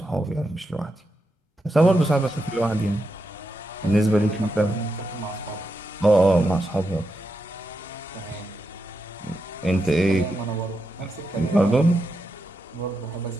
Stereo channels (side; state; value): both; normal; correlation 0.85